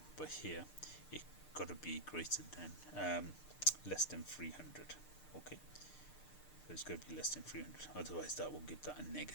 but here it got to be greater than less than 300. Okay, so it's going to be less than 300, otherwise that will give that a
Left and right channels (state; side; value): late; right; 6.7 ms